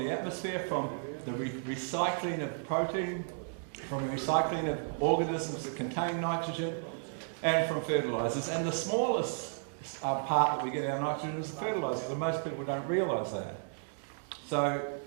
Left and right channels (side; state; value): left; silent; digital silence